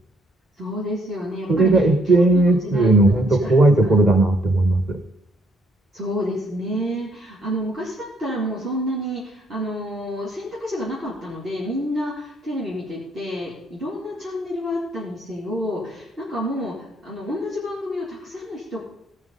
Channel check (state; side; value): normal; both; correlation 0.68